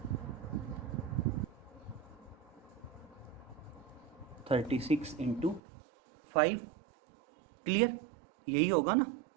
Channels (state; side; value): drops out; left; at 5.6 s